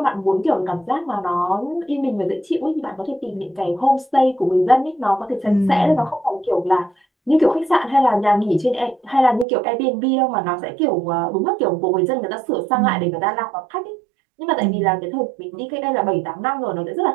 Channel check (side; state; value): left; drops out; at 9.5 s